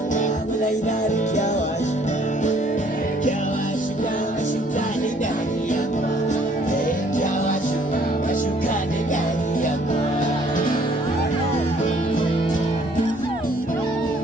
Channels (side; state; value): both; normal; correlation 0.61